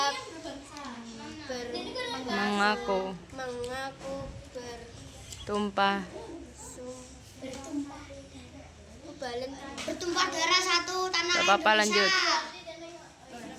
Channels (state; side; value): identical; both; correlation 1.00